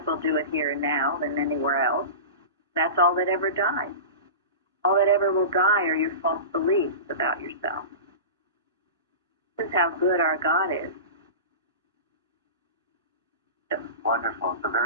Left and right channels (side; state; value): both; inverted; correlation -0.31